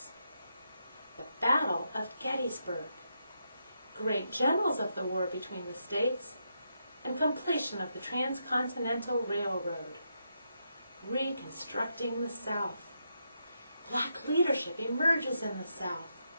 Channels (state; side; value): inverted; both; correlation -0.82